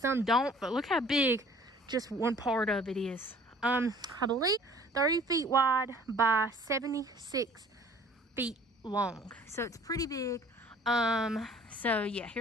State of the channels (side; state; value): both; normal; correlation 0.52